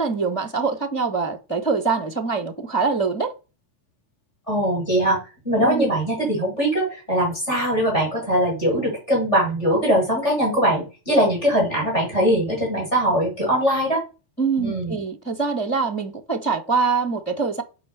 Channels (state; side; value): late; right; 3.4 ms